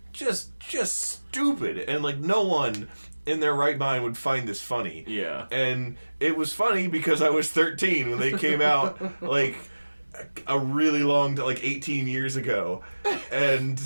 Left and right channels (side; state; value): both; inverted; correlation -1.00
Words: just stupid, and like no one in their right mind would find this funny. Yeah. And it was funny because I was 13 when they came out, like a really long, like 18 years ago. And